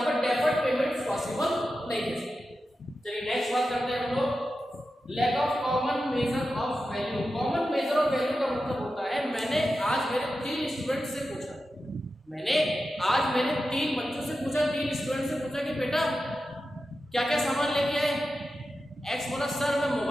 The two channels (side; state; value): both; normal; correlation 0.91